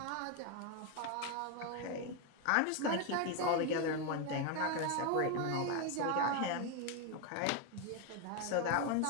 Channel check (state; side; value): different; both; correlation 0.01